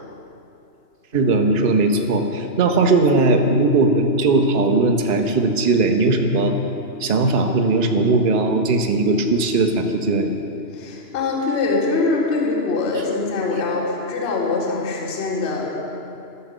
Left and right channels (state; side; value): late; right; 2.9 ms